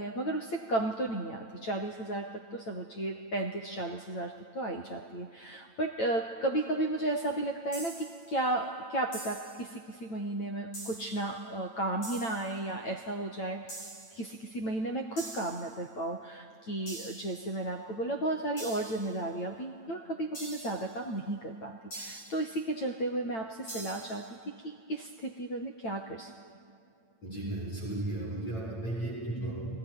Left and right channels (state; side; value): late; right; 9.0 ms